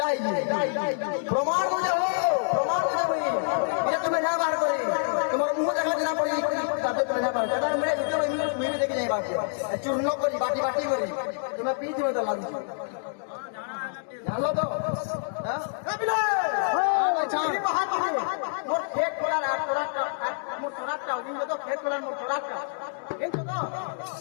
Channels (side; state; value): right; silent; digital silence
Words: প্রমাণ বুঝে হো প্রমাণ বুঝে ভাই এটা তুমি না বার করে তোমার মুখ দেখা দিনা পড়ি তাতে তুমি না বার এটা মেরে ভিডিও মিমি দেখে যাই বাকি চূর্ণ করি বাটি বাটি করি তোমার পিঠ মতো লাগছে জানো তো হ্যাঁ আচ্ছা মোর খেত করার আর তোরাটা মোর তোরাটা ওদিন তো খেত করার মোর তোরাটা এই তো